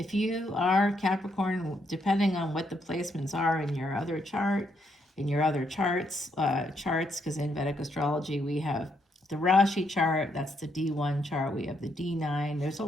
you are Capricorn, depending on what the placements are in your other chart, in your other charts, because in Vedic Astrology we have the Rashi chart, that's the D1 chart. We have the D9. There's a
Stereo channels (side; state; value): both; normal; correlation 0.76